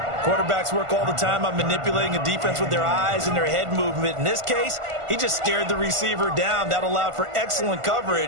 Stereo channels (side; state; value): left; late; 1.5 ms